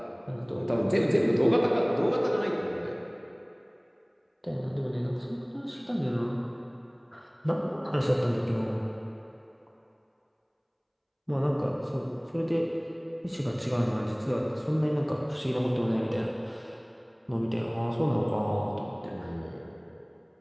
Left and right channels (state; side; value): identical; both; correlation 1.00